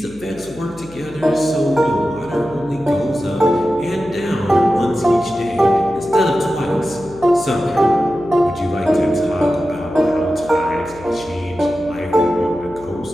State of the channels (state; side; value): noise; left; hum, 21 dB below the sound